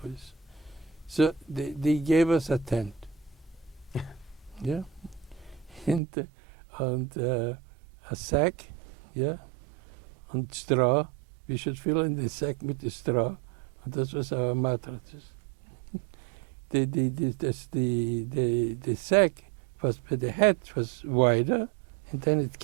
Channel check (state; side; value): drops out; left; at 6.0 s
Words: boys. So they gave us a tent. Yeah. And a sack, yeah, and straw. We should fill in the sack with the straw. And this was our mattresses. The sack was, the head was wider, and then it